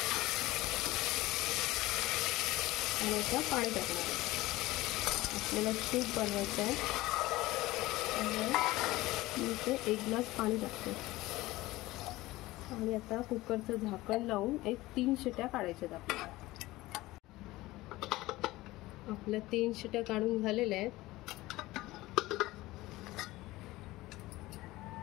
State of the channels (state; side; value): quieter; right; 18.6 dB